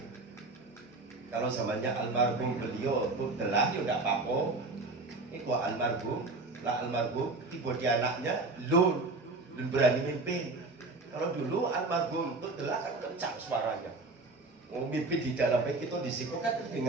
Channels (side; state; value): left; quieter; 3.4 dB